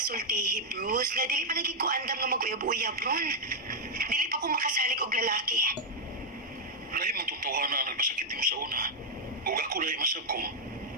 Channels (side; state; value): both; normal; correlation -0.03